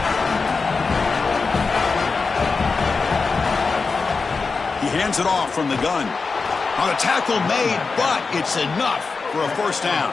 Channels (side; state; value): right; quieter; 4.5 dB